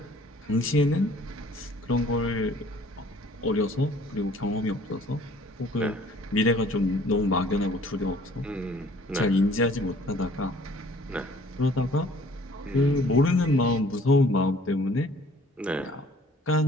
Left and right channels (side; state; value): both; normal; correlation 0.55